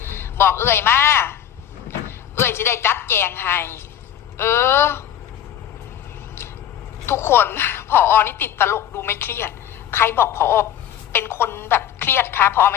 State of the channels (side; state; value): right; quieter; 10.4 dB